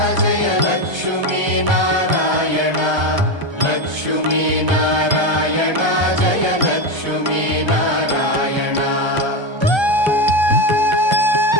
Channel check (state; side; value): late; left; 1.3 ms